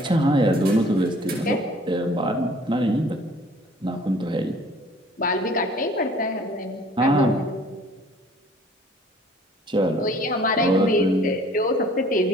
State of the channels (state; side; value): normal; both; correlation 0.53